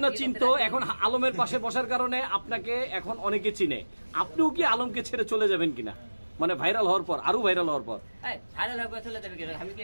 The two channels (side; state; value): both; inverted; correlation -1.00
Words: না চিনতো, এখন আলমের পাশে বসার কারণে আপনাকে এখন অনেকে চিনে। আপনিও কি আলমকে ছেড়ে চলে যাবেন কিনা, মানে ভাইরাল হওয়ার পর, আরো ভাইরাল হওয়ার পর? ভাইরাল হয়ে চলে যাবে কিনা? আমি কি